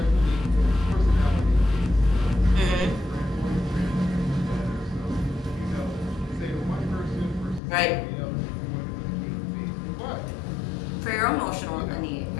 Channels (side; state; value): right; drops out; at 7.6 s